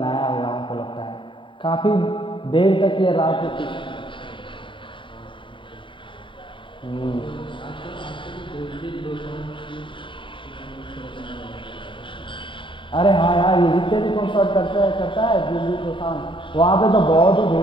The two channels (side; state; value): right; late; 0.24 ms